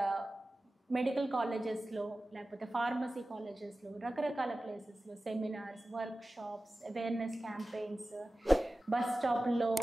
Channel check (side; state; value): both; normal; correlation 0.95